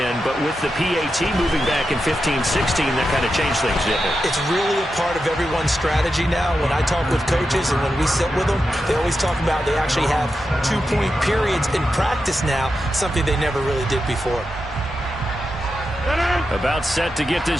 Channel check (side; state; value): both; normal; correlation 0.88